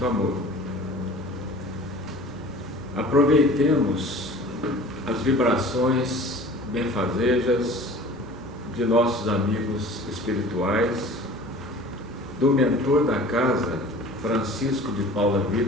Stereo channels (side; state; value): both; normal; correlation 0.43